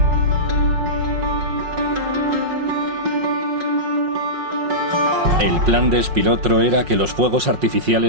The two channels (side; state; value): left; late; 5.5 ms